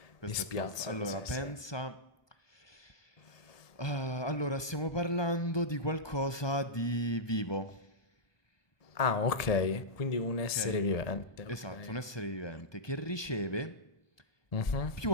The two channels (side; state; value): right; late; 1.2 ms